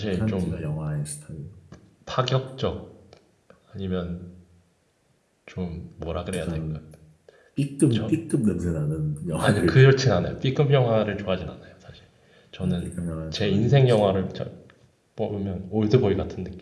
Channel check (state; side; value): identical; both; correlation 1.00